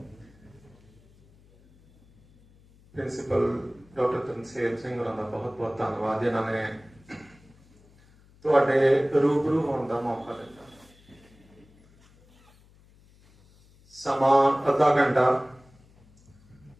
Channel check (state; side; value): noise; left; hum, 28 dB below the sound